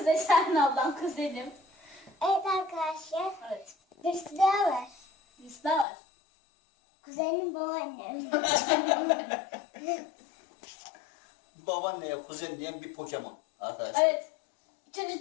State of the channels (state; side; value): drops out; right; at 5.9 s